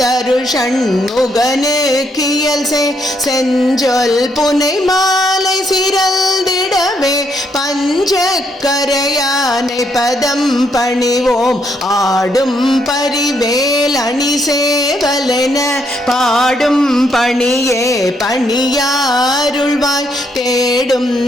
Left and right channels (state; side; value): normal; both; correlation 0.74